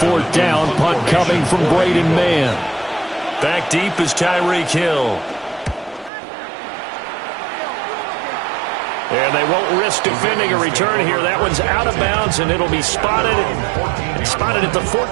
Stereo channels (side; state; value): left; drops out; at 6.1 s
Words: down, punt coming from Braden Mann. Back deep is Tyreek Hill. And they won't risk defending a return here. That one's out of bounds, and it'll be spotted at the